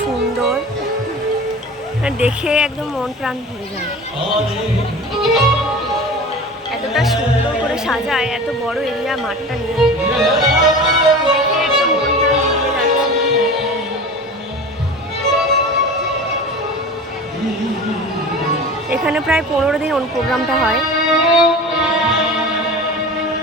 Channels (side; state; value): both; normal; correlation 0.35